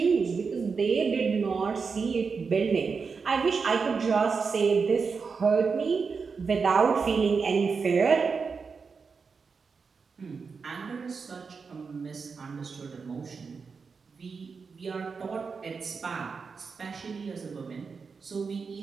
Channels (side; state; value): left; quieter; 5.2 dB